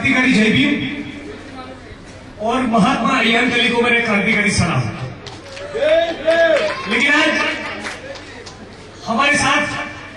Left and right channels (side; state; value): both; identical; correlation 1.00